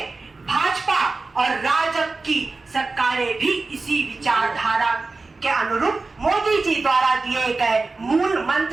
भाजपा और राजग की सरकारें भी इसी विचारधारा के अनुरूप मोदी जी द्वारा दिए गए मूल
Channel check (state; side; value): quieter; left; 3.7 dB